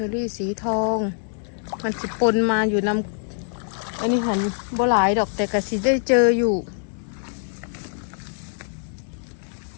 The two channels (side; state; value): right; silent; digital silence